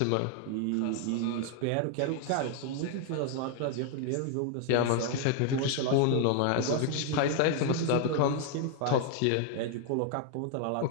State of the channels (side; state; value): both; different; correlation 0.00